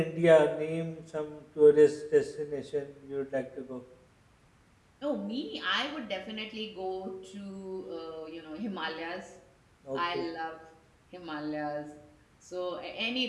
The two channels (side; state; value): both; identical; correlation 1.00